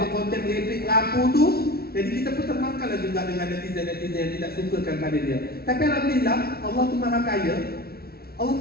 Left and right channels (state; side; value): late; right; 0.44 ms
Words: konten merepek lapu tu, jadi kita pun termakanlah juga dengan netizen-netizen yang tidak sukakan pada dia. Tapi alhamdulillah, Allah tu maha kaya. Allah